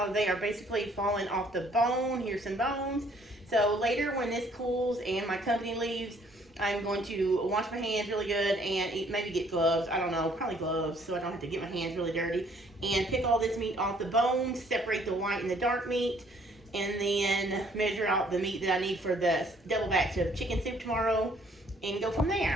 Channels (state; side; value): normal; both; correlation 0.62